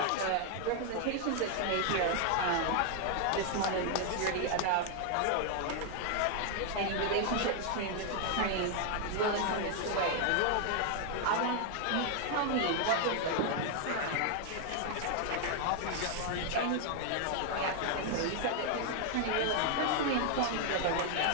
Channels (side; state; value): both; different; correlation 0.00